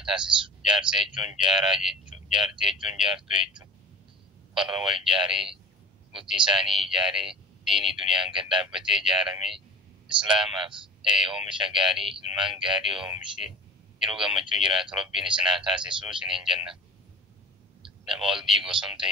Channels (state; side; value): normal; both; correlation 0.38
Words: taasisu jaarsa jechuun jaaraa jechuu jaartii jechuun jaartuu jechuu warra wal jaaree bultii isaanii ijaaree diinii duniyaan gad dhaabbatee jaarame islaamaaf oomisha gaarii ilmaan gaarii oomishee yeroo gammachuu jiraatu rabbiin isin haa taasisu isiniin jenna nama wal diiguu osoo hin